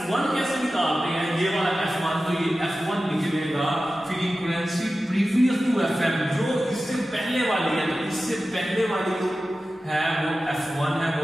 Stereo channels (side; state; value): both; normal; correlation 0.94